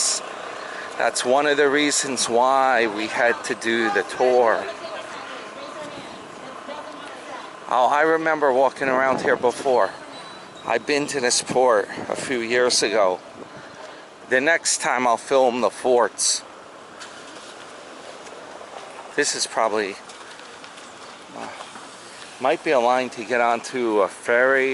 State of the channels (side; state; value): both; identical; correlation 1.00